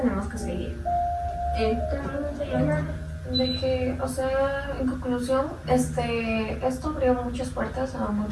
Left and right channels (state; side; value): identical; both; correlation 1.00